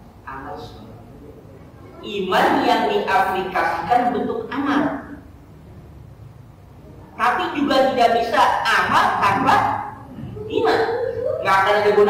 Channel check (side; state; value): both; identical; correlation 1.00